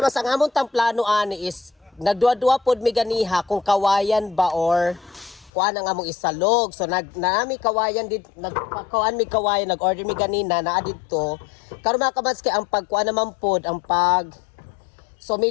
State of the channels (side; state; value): right; drops out; at 5.5 s